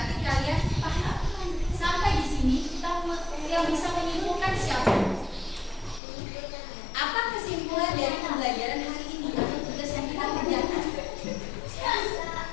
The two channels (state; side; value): drops out; right; at 6.0 s